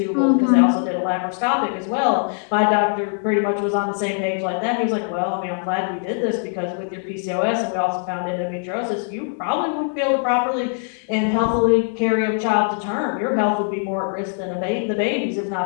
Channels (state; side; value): silent; right; 64 dB below the other